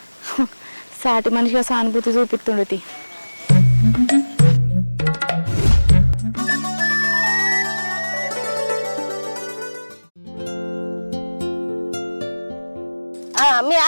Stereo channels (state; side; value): inverted; both; correlation -1.00